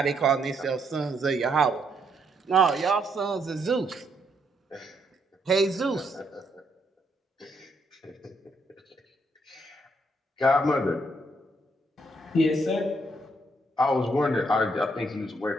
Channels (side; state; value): both; normal; correlation 0.74